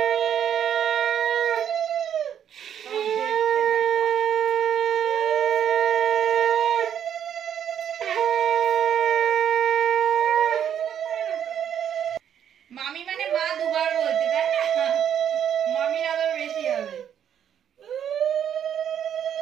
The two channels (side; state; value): left; quieter; 9.2 dB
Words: মামি মানে মা দুবার বলছে, তাই না? মামির আদর বেশি হবে।